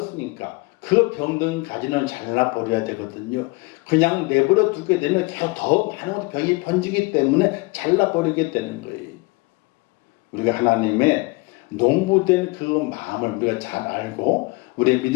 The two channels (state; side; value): quieter; right; 25.5 dB